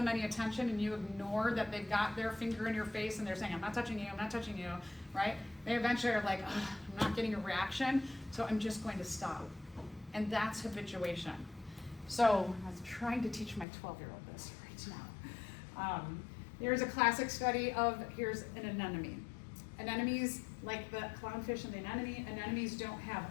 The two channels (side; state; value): right; drops out; at 13.7 s